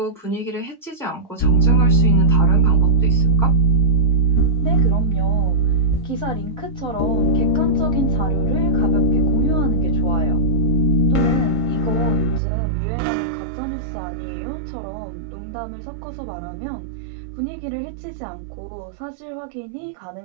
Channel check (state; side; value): drops out; left; at 12.4 s